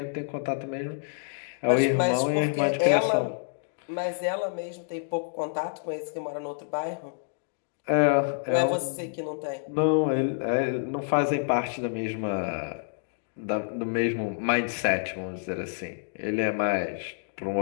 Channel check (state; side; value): silent; right; digital silence